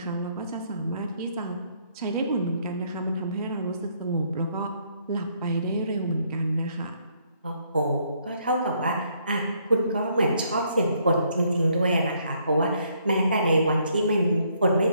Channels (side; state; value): both; inverted; correlation -0.70